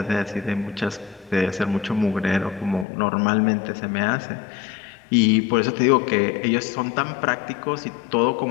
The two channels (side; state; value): right; drops out; at 2.9 s